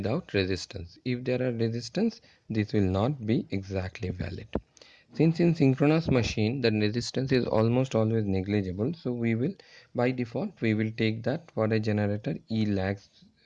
resistance. If there are resistance, this will not be exactly valid. Since in synchronous machine the resistance is almost always negligible, so we will, by default, we will take that for a generator E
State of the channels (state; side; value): identical; both; correlation 1.00